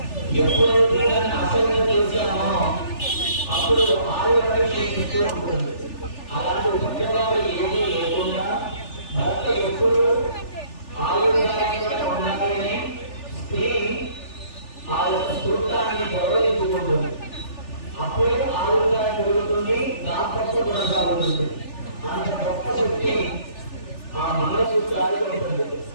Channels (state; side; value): late; right; 3.4 ms